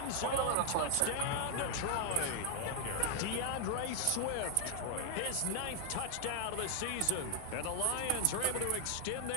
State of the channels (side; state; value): both; different; correlation 0.00